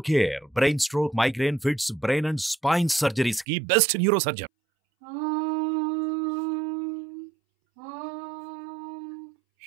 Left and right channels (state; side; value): drops out; left; at 3.5 s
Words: care brain stroke migraine fits brain and spine surgeries కి బెస్ట్ న్యూరో సర్జన్.